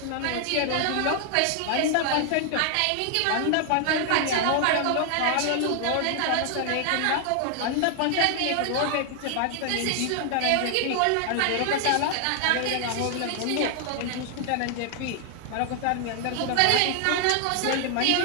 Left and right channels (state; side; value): different; both; correlation 0.00